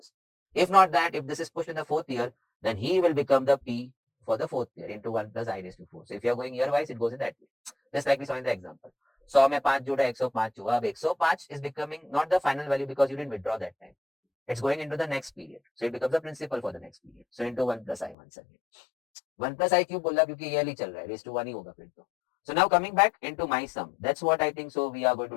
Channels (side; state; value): right; drops out; at 18.2 s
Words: If not that, if this is pushed in the fourth year, then he will become the P for the fourth year into 1 plus I raised to 4. So if you're going year wise, it goes in that way. Just like we saw in the example. 100 में 5 जोड़ा 105 हुआ. अब 105 is becoming not the final value because you didn't withdraw that time. It's going into the next period. So it becomes the principal for the next period. So into 1 plus I once again. 1 plus I क्यों बोला क्योंकि yearly चल रहा है. Raised to 1 ही होगा फिर तो. So now coming back into my sum. That's what I think so we are going to